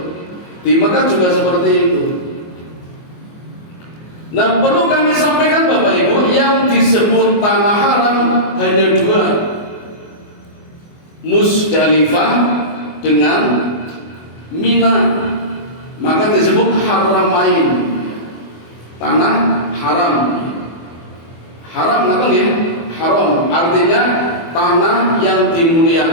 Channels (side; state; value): right; late; 24 ms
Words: Di Mekah juga seperti itu. Nah, perlu kami sampaikan Bapak Ibu, yang disebut Tanah Haram hanya dua, Musdalifah dengan Mina. Maka disebut Haramain, Tanah Haram. Haram nggak ya? Haram artinya tanah yang